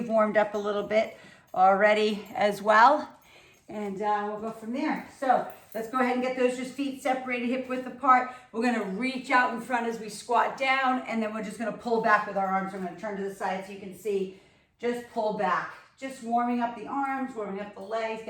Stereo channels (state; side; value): identical; both; correlation 1.00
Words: warmed up a little bit already as well. And we'll go from there. So let's go ahead and get those just feet separated, hip width apart. We're gonna reach out in front as we squat down, and then we're just gonna pull back with our arms. I'm gonna turn to the side so you can see. Just pull back. Just warming up the arms, warming up the legs,